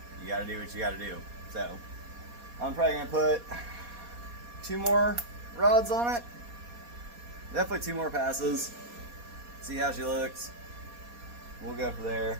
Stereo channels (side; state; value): left; late; 4.2 ms